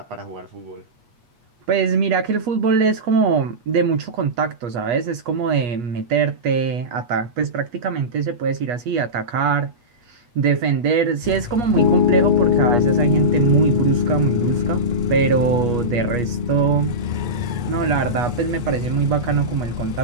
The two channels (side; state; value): left; late; 8.3 ms